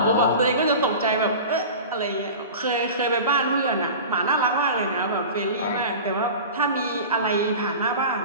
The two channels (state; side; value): inverted; both; correlation -0.34